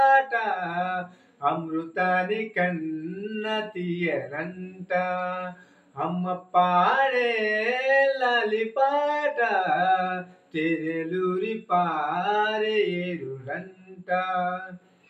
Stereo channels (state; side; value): identical; both; correlation 1.00